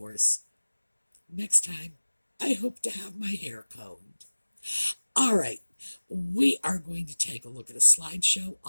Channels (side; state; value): both; inverted; correlation -1.00